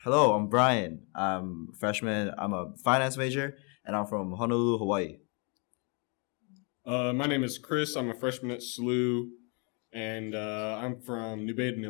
Hello, I'm Brian. I'm a freshman. I'm a finance major, and I'm from Honolulu, Hawaii. My name is Chris. I'm a freshman at SLU, and I'm from New Baden,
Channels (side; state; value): right; quieter; 35.2 dB